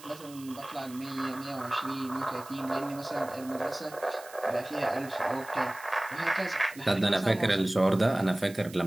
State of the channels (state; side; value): noise; right; hiss, 19 dB below the sound